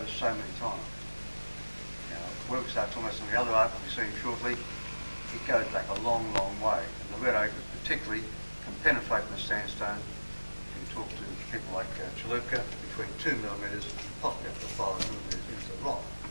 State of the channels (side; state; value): both; inverted; correlation -1.00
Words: so many times. Now, work starts almost on the other art we'll be seeing shortly. It goes back a long, long way. And the red ochre particularly can penetrate in the sandstone. You can talk to people like Chalupka, between 2 millimetres and possibly up to 5 millimetres into the rock.